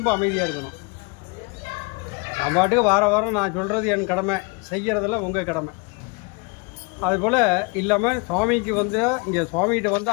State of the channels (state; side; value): quieter; right; 30.2 dB